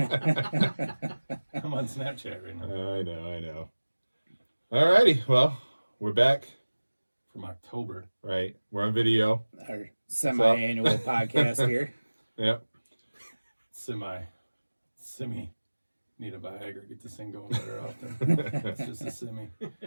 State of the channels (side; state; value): both; inverted; correlation -1.00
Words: I'm on Snapchat right now. I know. Alrighty, well, we're back. From October. Right. We're on video. Our semi-annual podcast here. Yep. Semi. Need a Viagra. Get this thing going better often. It's just a semi.